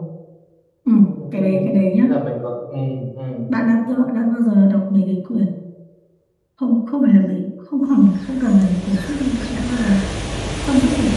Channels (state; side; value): identical; both; correlation 1.00